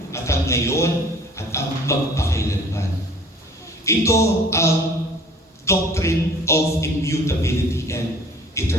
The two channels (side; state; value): both; normal; correlation 0.50